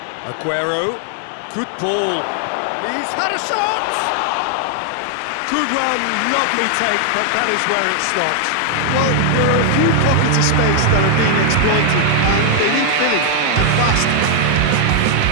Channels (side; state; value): both; different; correlation 0.00